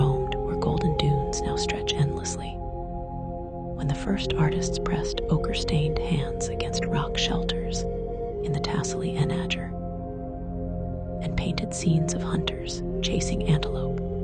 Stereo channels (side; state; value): both; identical; correlation 1.00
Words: where golden dunes now stretch endlessly, when the first artists pressed ochre-stained hands against rock shelters in the Tassili Enager, and painted scenes of hunters chasing antelope